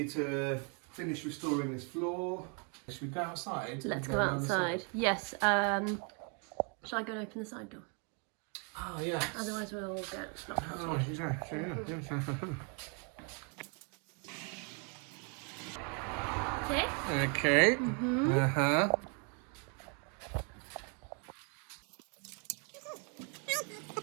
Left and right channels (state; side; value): quieter; left; 37.3 dB